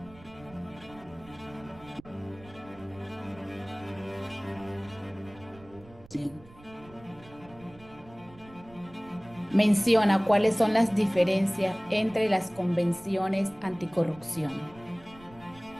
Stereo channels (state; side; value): noise; right; rumble, 22 dB below the sound